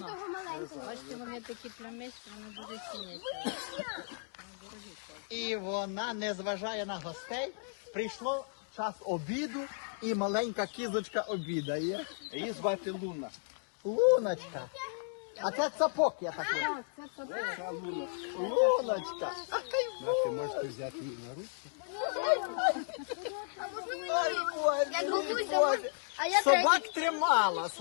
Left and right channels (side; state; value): right; silent; digital silence